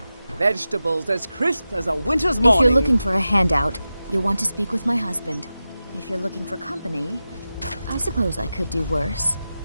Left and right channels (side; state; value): both; inverted; correlation -0.93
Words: Vegetables as crisp as a winter's morning. If you're looking for a handout, you'll want to speak with my husband. If you're looking for company, I suppose I could do worse.